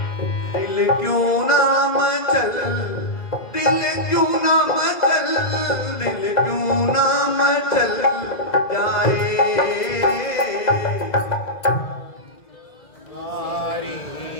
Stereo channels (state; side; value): late; right; 2.0 ms